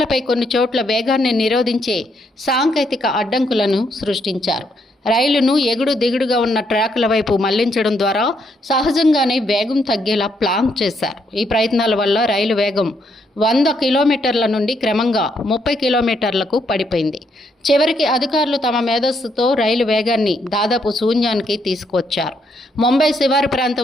కొన్ని చోట్ల వేగాన్ని నిరోధించే సాంకేతిక అడ్డంకులను సృష్టించారు. రైలును ఎగుడు దిగుడుగా ఉన్న ట్రాకుల వైపు మళ్లించడం ద్వారా సహజంగానే వేగం తగ్గేలా ప్లాన్ చేశారు. ఈ ప్రయత్నాల వల్ల రైలు వేగం 100 కిలోమీటర్ల నుండి క్రమంగా 30 కిలోమీటర్లకు పడిపోయింది. చివరికి అధికారులు తమ మేధస్సుతో రైలు వేగాన్ని దాదాపు శూన్యానికి తీసుకువచ్చారు. ముంబై శివారు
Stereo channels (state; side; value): normal; both; correlation 0.74